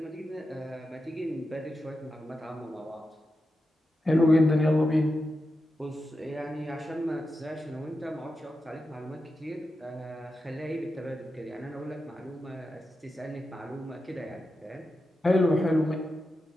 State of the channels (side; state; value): both; normal; correlation 0.90